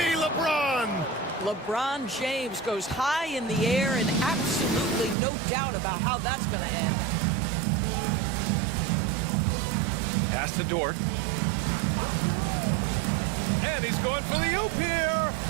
LeBron? LeBron James goes high in the air and absolutely no doubt about how that's going to end. Pass to Dort. And he's going for the oop here.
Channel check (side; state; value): left; drops out; at 5.2 s